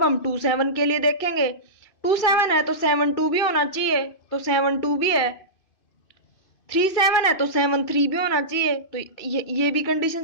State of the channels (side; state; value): right; late; 2.6 ms